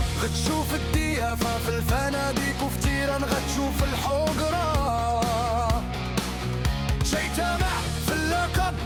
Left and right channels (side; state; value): both; identical; correlation 1.00